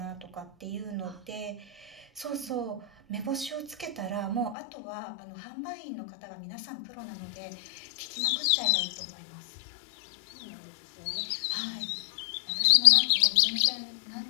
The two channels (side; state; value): right; drops out; at 4.5 s